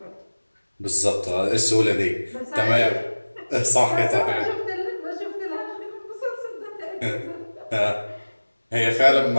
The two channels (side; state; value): both; inverted; correlation -1.00